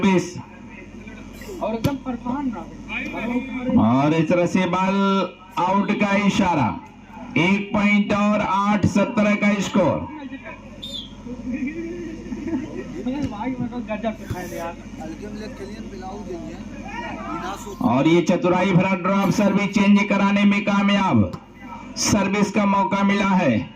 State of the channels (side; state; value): both; identical; correlation 1.00